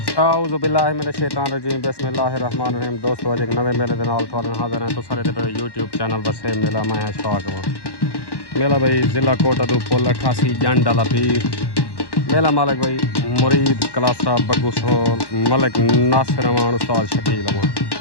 आऊज़ु बिल्लाहि मिनश शैतानिर रजीम बिस्मिल्लाहिर रहमानिर रहीम। दोस्तों अज एक नवे मेले के नाल तुहाडे नाल हाज़िर हैं। तो सारे पे यूट्यूब चैनल बसे मेला मैं अशफाक मेला भाई ज़िला कोटदू पुल 88 जंड वाला पीर मेला मालिक भाई मुरीद कलासा बग्गू सोल मलिक नासिर अमान उस्ताद शकील अमान।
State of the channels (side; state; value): right; late; 1.1 ms